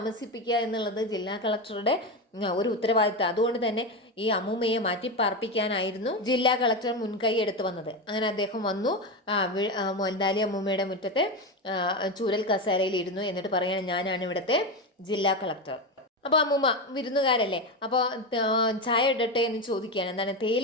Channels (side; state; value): both; normal; correlation 0.16